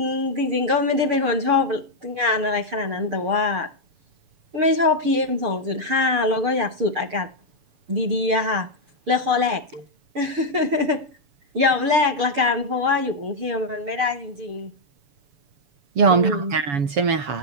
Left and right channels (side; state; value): left; late; 7.0 ms